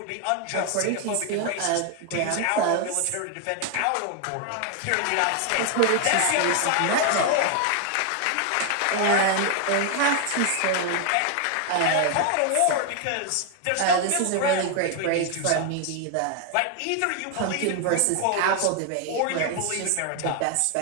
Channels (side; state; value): both; different; correlation 0.00